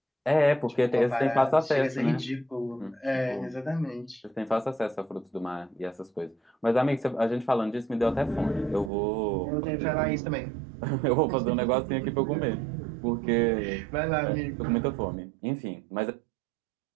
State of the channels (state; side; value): drops out; left; at 8.9 s